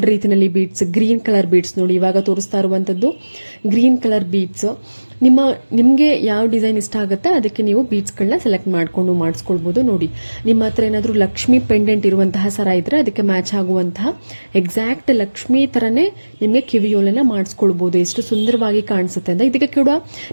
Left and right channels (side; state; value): both; inverted; correlation -1.00